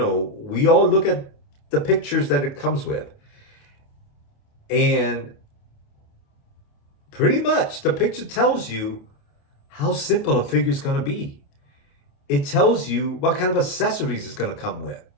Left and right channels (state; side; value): late; right; 28 ms